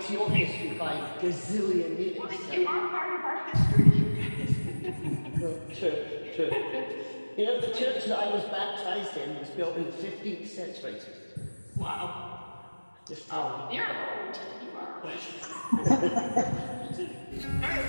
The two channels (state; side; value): inverted; both; correlation -1.00